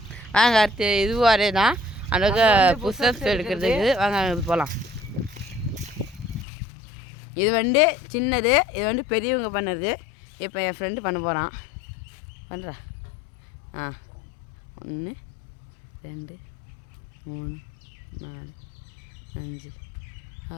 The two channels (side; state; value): right; drops out; at 6.5 s